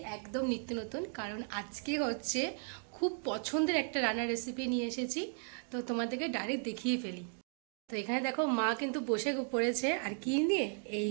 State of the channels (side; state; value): left; silent; 54 dB below the other